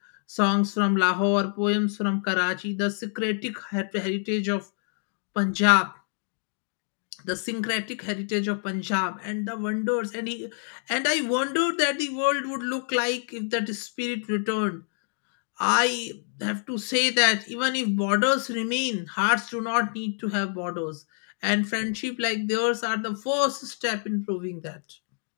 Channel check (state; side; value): silent; right; 60 dB below the other